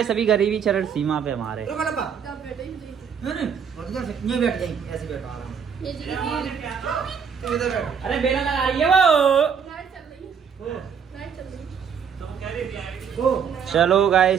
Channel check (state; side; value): quieter; left; 7.0 dB